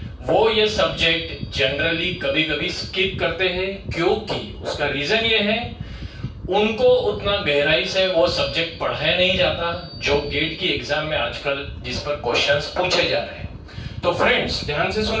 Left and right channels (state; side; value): identical; both; correlation 1.00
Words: वो ये सब्जेक्ट जनरली कभी कभी स्किप करते हैं, क्योंकि उसका रीजन ये है उनको उतना गहराई से वो सब्जेक्ट पढ़ाया नहीं जाता जो गेट की एग्जाम में आजकल जिस पर क्वेश्चंस पूछे जा रहे हैं। तो फ्रेंड्स ध्यान से सुन